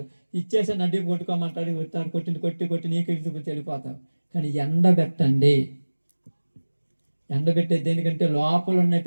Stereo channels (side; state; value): both; inverted; correlation -1.00